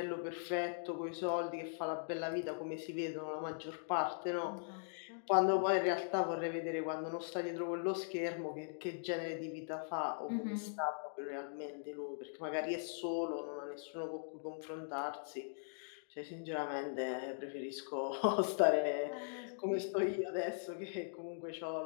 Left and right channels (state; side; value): silent; right; digital silence